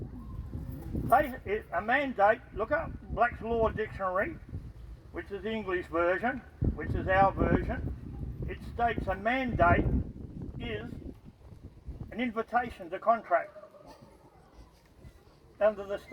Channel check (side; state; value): both; identical; correlation 1.00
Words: A mandate, look up Black's Law Dictionary, which is the English version, which is our version. It states a mandate is an invitation to contract. Under the